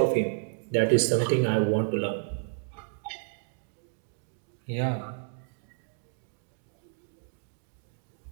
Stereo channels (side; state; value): left; silent; digital silence